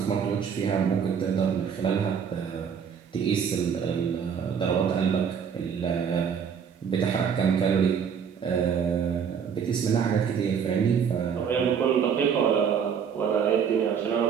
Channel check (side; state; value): left; quieter; 7.2 dB